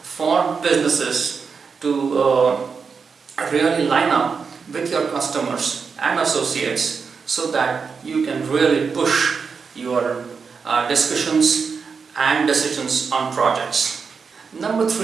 for businesses to really line up with your customers and associates so that you can really push your discussions and decisions on projects. Number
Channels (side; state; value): left; quieter; 5.5 dB